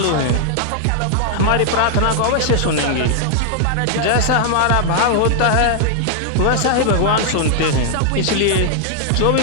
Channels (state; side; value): different; both; correlation 0.00